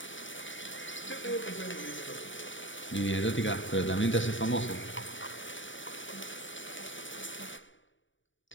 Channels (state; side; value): late; right; 0.56 ms